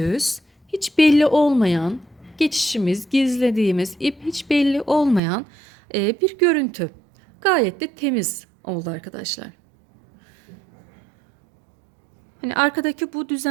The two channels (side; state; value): left; drops out; at 5.2 s